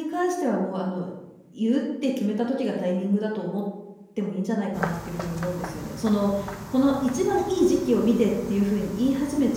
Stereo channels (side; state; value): both; identical; correlation 1.00